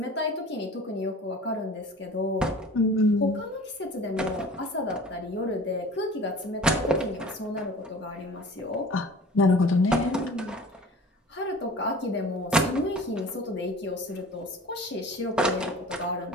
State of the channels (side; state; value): both; normal; correlation 0.42